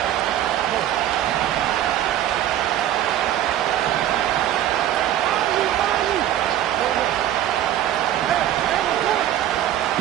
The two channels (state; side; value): quieter; left; 11.9 dB